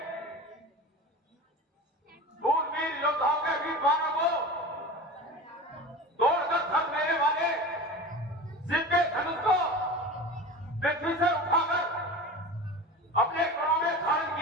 दूरबीन योद्धाओं के वीरवानों को तोड़कर धर लेने वाले जिनके धनुष को पृथ्वी से उठाकर अपने करों में धारण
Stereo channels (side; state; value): both; normal; correlation 0.33